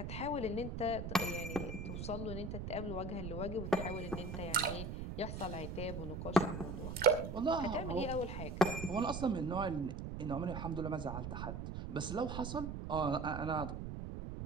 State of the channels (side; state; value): right; noise; rumble, 5 dB below the sound